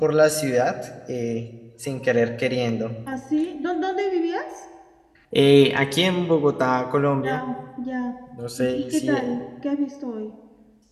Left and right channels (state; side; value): identical; both; correlation 1.00